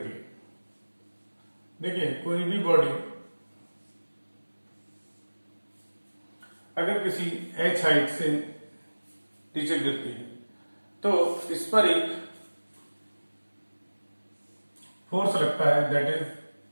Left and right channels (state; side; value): inverted; both; correlation -1.00